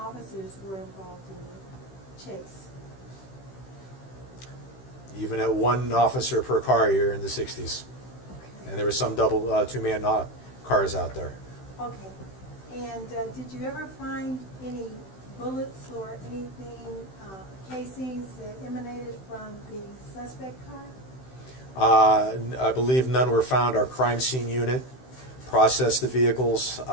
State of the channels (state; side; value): late; right; 16 ms